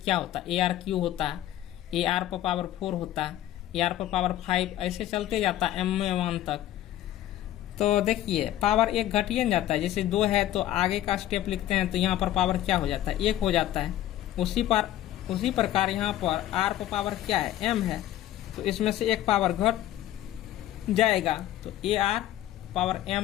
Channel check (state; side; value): quieter; right; 13.2 dB